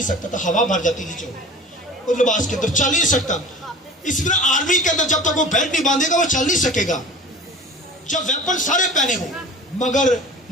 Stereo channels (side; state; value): both; normal; correlation 0.39